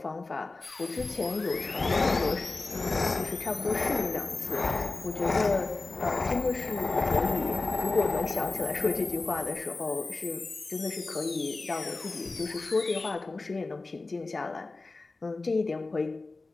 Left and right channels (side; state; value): right; quieter; 3.5 dB